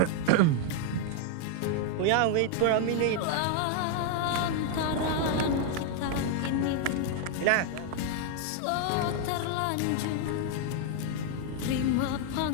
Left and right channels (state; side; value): different; both; correlation 0.00